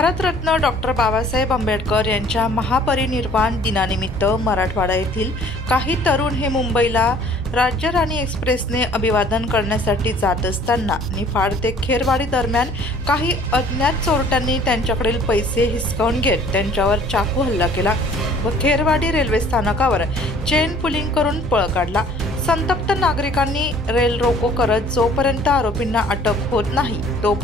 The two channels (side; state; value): both; normal; correlation 0.53